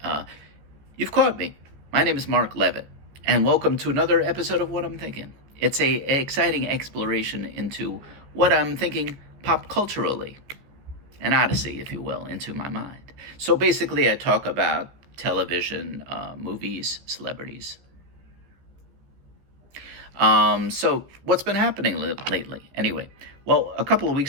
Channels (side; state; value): left; late; 15 ms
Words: You've caught me. My name is Mark Levitt, and welcome to another episode of What I'm Thinking. It's a exciting exploration into what I'm thinking pop culturally, an odyssey, if you will, into my mind. So basically, I talk about television, movies, celebrities. So what's been happening lately? Anyway, well, a couple of